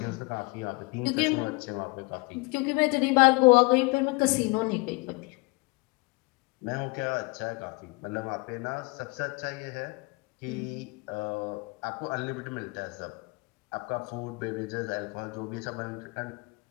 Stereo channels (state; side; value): quieter; right; 27.5 dB